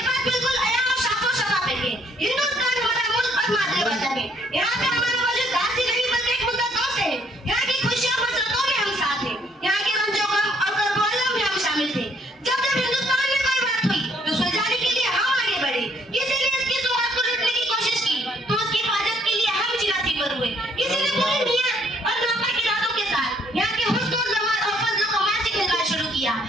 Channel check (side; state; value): both; normal; correlation 0.66